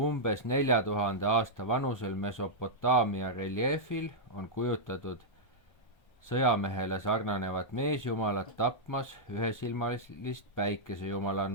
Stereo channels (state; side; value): late; right; 1.3 ms